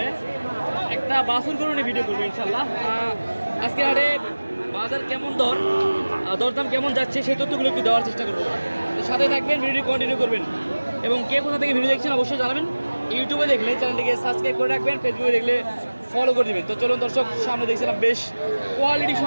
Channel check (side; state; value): both; inverted; correlation -1.00